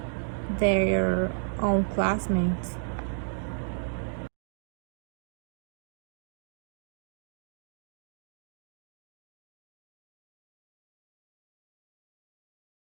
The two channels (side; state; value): left; silent; digital silence